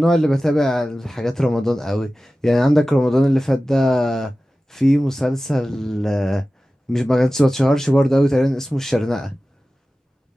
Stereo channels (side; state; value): both; normal; correlation 0.96